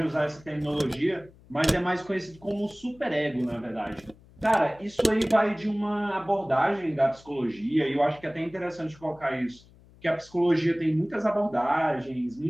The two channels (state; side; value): noise; left; hum, 25 dB below the sound